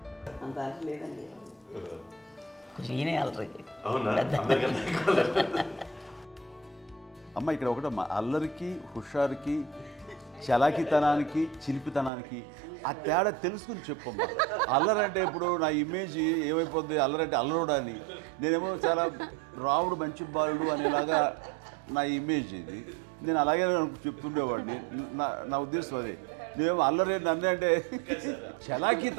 అంత అల్లరి లేదండి. కొంచెం ఈయనే అల్లరి. అమ్మ ఇక్కడ ఒకటమ్మా, అల్లరికి, హుషారుకి, చలాకితనానికి, చిలిపితనానికి ఆ తేడా తెలుసుకుని చెప్పమ్మా. అల్లరంటే ఇప్పుడు నా ఇమేజ్ ఏమైపోద్ది, అల్లరంటే అల్లరుడు అని, నేనేమో చాలా రాముడు మంచి బాలుడు అనేలాగా నా ఇమేజ్ ఇది. నేను అలాగే చెప్తుండేవాడిని. నా ఉద్దేశం అదే. నేనేమో అల్లరి నన్ను అంటే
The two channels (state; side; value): drops out; left; at 12.1 s